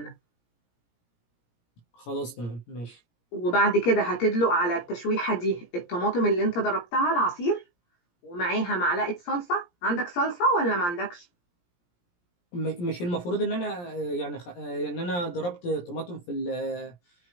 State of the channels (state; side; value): late; right; 17 ms